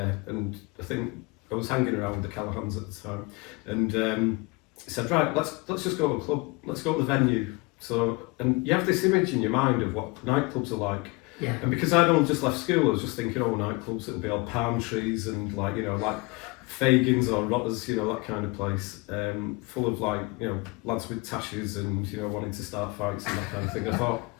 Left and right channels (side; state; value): right; quieter; 26.2 dB